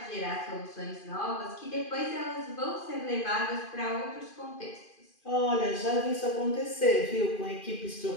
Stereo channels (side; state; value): right; late; 2.5 ms